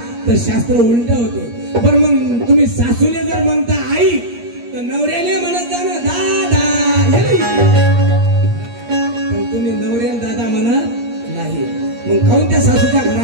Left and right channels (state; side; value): late; left; 8.5 ms